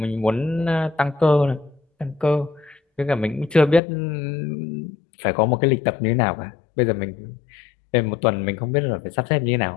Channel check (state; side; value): drops out; right; at 3.8 s